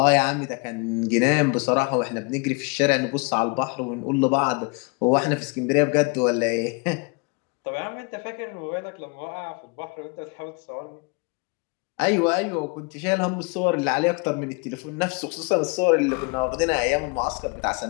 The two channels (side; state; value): right; quieter; 31.4 dB